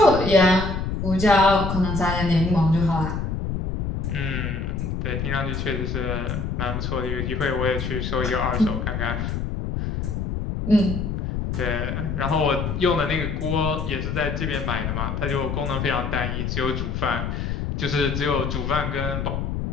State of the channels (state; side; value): noise; left; rumble, 2 dB below the sound